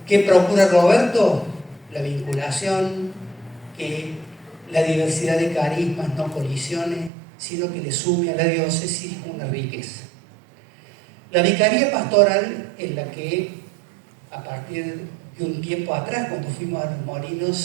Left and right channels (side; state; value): left; drops out; at 7.1 s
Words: ¿Qué procura Roberto? La vinculación, que la diversidad de carismas no colisione, sino que le sume a la diócesis una riqueza. La vicaría pastoral, en la que a partir de un tiempo atrás, cuando fuimos a Los